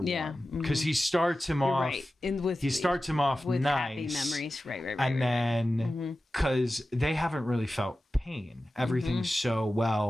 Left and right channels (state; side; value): normal; both; correlation 0.94